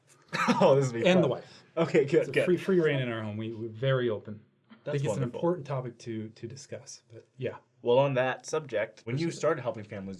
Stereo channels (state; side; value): identical; both; correlation 1.00